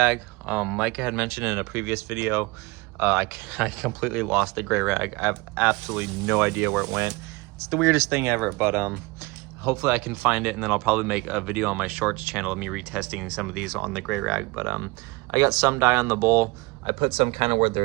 Micah had mentioned in a previous video, I completely lost the gray rag. I have absolutely no idea where it went. It's the weirdest thing ever, but hopefully I can find it, and then I'll probably make a video on my shorts channel of me retesting some of these on the gray rag. But I got some dye on the bowl. I put some kind of where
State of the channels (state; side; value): quieter; left; 23.8 dB